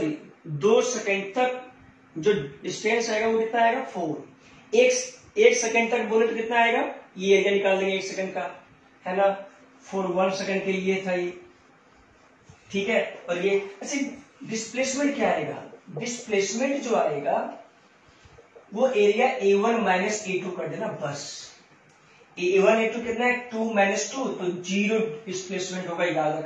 2 सेकेंड तक जो डिस्टेंस आएगा वो कितना आएगा 4, एक सेकेंड तक बोले तो कितना आएगा, ये एरिया निकाल देंगे 1 सेकेंड का, है ना, 4 1 सेकेंड के लिए था ये, ठीक है। और ये अच्छा डिस्प्लेसमेंट क्या आएगा, डिस्प्लेसमेंट जो आएगा वो एरिया A1 माइनस A2 कर देना बस, A1 A2 कितना है 2 - 2, तो 0 डिस्प्लेसमेंट होगा, याद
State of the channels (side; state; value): both; identical; correlation 1.00